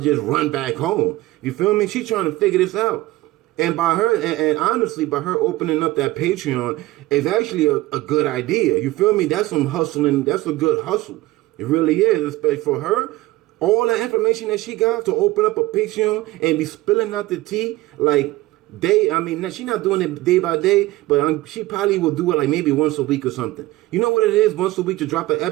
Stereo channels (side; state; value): left; quieter; 18.5 dB